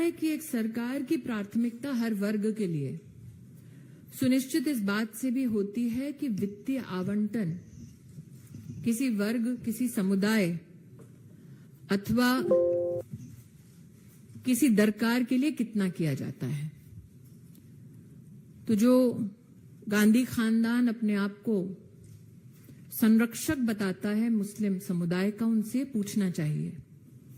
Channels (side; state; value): both; identical; correlation 1.00